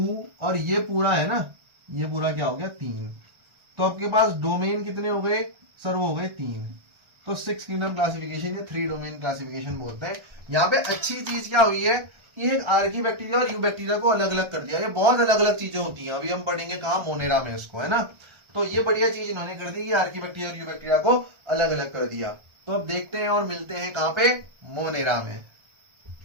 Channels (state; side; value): late; left; 1.3 ms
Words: और ये पूरा है ना, ये पूरा क्या हो गया? 3। तो आपके पास डोमेन कितने हो गए सर? वो हो गए 3। तो 6 किंगडम क्लासिफिकेशन या 3 डोमेन क्लासिफिकेशन बोलते हैं। यहाँ पे अच्छी चीज क्या हुई है कि एक आर्की बैक्टीरिया और यू बैक्टीरिया को अलग अलग कर दिया। ये बहुत अलग अलग चीजें होती हैं, अभी हम पढ़ेंगे कहाँ, मोनेरा में इसको, है ना। तो ये बढ़िया चीज इन्होंने कर दी कि आर्की बैक्टीरिया और यू बैक्टीरिया को अलग अलग कर दिया। तो अब देखते हैं और मिलते हैं कहाँ पे? मोनेरा में।